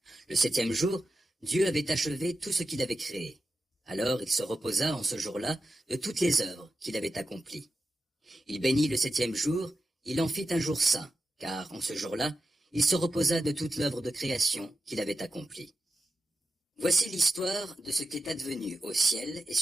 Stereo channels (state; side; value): normal; both; correlation 0.90